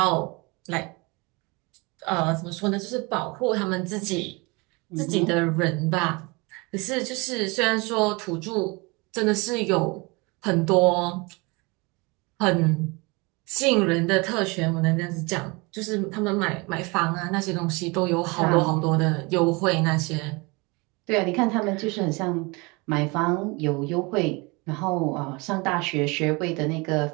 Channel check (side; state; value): left; quieter; 26.8 dB